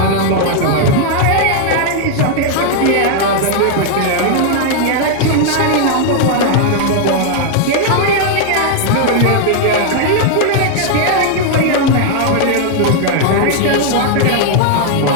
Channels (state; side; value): different; both; correlation 0.00